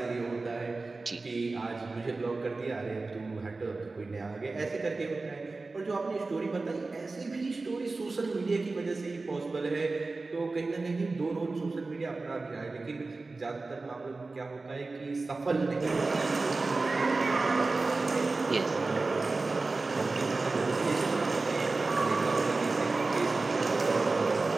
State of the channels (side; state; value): left; quieter; 3.6 dB